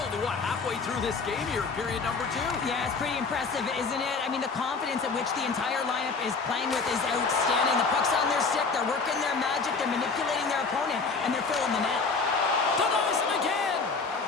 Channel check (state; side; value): quieter; right; 4.5 dB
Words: halfway through this game here, period number 2. Yeah, it's pretty impressive, isn't it? I mean, the confidence at which the entire lineup is playing with is outstanding. The puck's on their stick, they're working their magic, they're manipulating their opponent, and they're filling the net. Denies him again!